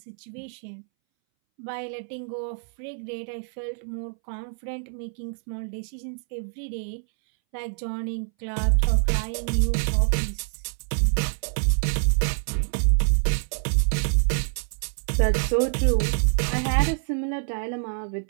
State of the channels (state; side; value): silent; left; 61 dB below the other